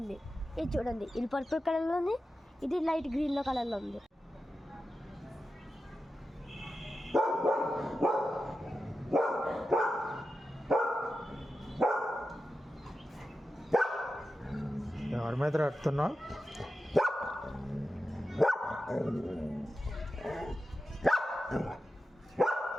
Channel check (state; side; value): normal; both; correlation 0.91